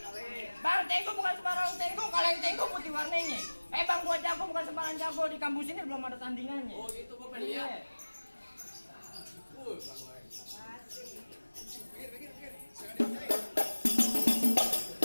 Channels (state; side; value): inverted; both; correlation -1.00